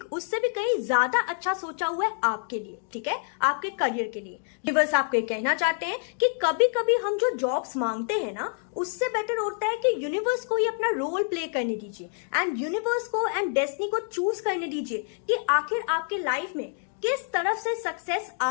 उससे भी कहीं ज्यादा अच्छा सोचा हुआ है आपके लिए, ठीक है, आपके करियर के लिए। यूनिवर्स आपको ये कहना चाहते हैं कि कभी कभी हम जो जॉब्स मांगते हैं ना उससे बेटर होता है कि यूनिवर्स को ही अपना रोल प्ले करने दीजिए एंड यूनिवर्स को एंड डेस्टिनी को चूज करने दीजिए कि आखिर आपके लाइफ में किस तरफ से सक्सेस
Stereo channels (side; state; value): right; silent; digital silence